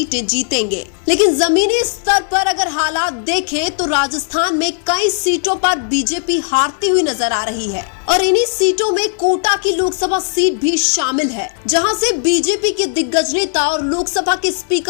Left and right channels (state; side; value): silent; right; digital silence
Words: जीतेंगे, लेकिन जमीनी स्तर पर अगर हालात देखें तो राजस्थान में कई सीटों पर बीजेपी हारती हुई नजर आ रही है और इन्हीं सीटों में कोटा की लोकसभा सीट भी शामिल है, जहां से बीजेपी के दिग्गज नेता और लोकसभा के